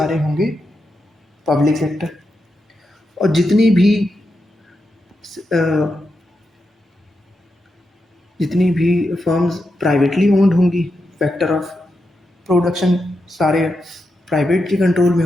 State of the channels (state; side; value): normal; both; correlation 0.86